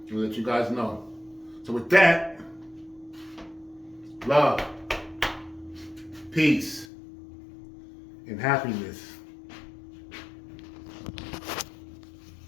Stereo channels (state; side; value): drops out; right; at 6.9 s